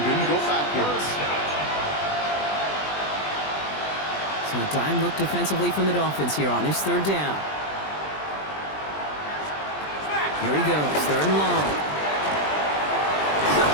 didn't go backwards. So a dime look defensively from the Dolphins here on this 3rd down. Here he goes, 3rd and long.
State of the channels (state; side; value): late; right; 20 ms